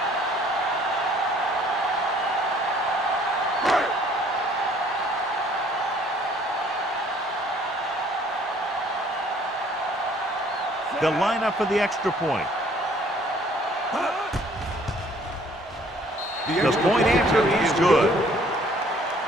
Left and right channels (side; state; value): both; normal; correlation 0.58